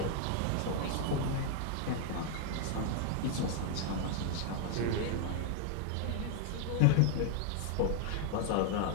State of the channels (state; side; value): different; both; correlation 0.00